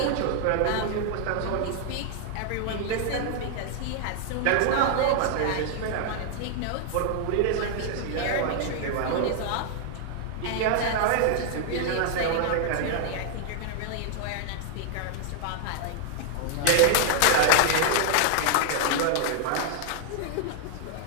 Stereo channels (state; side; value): different; both; correlation 0.00